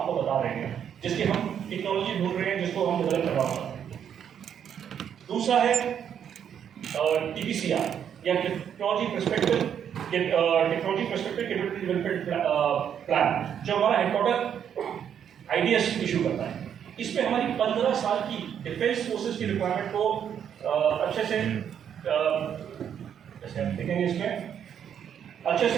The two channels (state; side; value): quieter; left; 8.7 dB